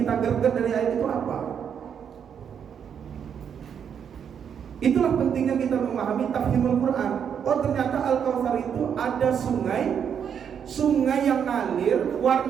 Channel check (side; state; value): left; quieter; 7.9 dB